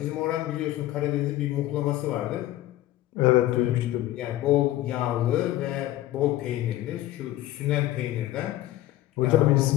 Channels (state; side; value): quieter; right; 15.0 dB